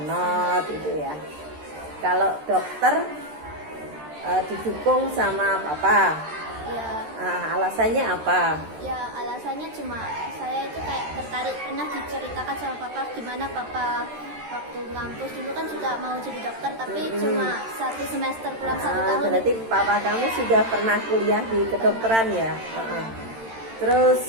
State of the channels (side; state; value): left; late; 13 ms